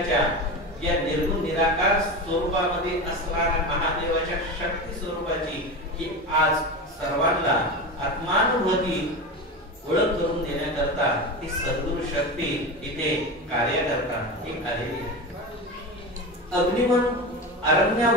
या निर्गुण निराकार स्वरूपामध्ये असणाऱ्या महादेवाच्या शक्ती स्वरूपाची ही आज सर्वांना आत्मानुभूती ओळख करून देण्याकरता ही सद्गुरु शक्ती इथे कार्य करता ही आलेली आहे. अग्निमन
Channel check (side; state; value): both; normal; correlation 0.24